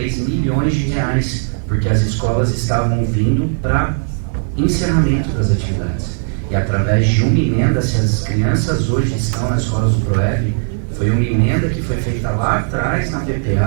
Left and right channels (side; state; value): left; silent; digital silence